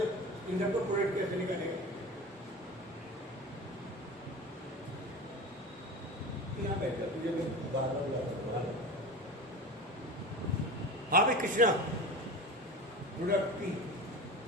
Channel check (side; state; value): both; normal; correlation 0.31